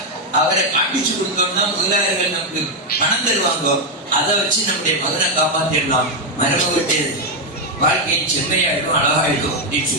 அவரை காட்டிச்சு கொடுத்தோம்னா முதலாளர்கள் நமக்கு பணம் தருவாங்க. அதை வச்சு நம்முடைய மகனை காப்பாற்றிடலாம், மருமகிட்ட வாழ்க்கையின் செம்மையாயிடும், அழகாயிடும் அப்படின்னு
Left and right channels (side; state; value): both; normal; correlation 0.04